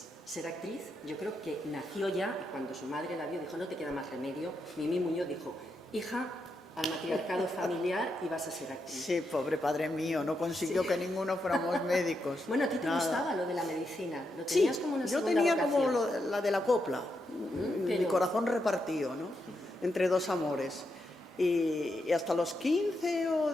ser actriz, yo creo que nació ya, y cuando su madre la vio dijo, no te queda más remedio, Mimi Muñoz dijo, hija, al matriarcado familiar y vas a ser actriz. Sí, pobre padre mío, no consiguió que ninguno fuéramos médicos. Bueno, ¿a ti te Nada. gustaba lo de la medicina? ¿Lo Sí, tenías como una yo segunda tenía vocación? como la de la copla, mi pero- corazón repartido, ¿no? Entre dos amores. Y hasta los 15 o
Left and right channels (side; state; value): both; normal; correlation 0.83